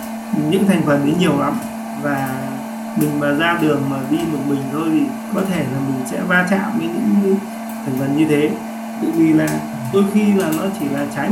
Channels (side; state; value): both; identical; correlation 1.00